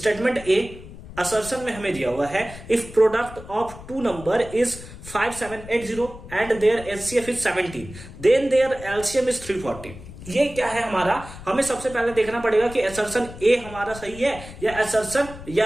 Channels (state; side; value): noise; left; rumble, 15 dB below the sound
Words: ए असर्शन में हमें दिया हुआ है if product of two number is 5780 and their HCF is 17 then their LCM is 340। ये क्या है हमारा, हमें सबसे पहले देखना पड़ेगा कि असर्शन ए हमारा सही है या असर्शन